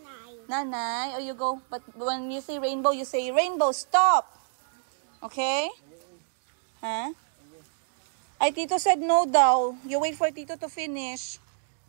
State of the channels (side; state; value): left; silent; digital silence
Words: Nanay, oh you go. But when you say rainbow, you say rainbow, stop. Okay? Huh? Ay, Tito said no daw. You wait for Tito to finish.